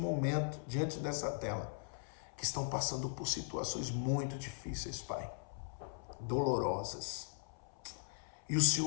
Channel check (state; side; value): silent; right; 51 dB below the other